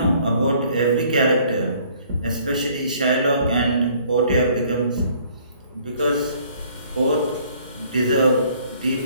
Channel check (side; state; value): both; inverted; correlation -0.59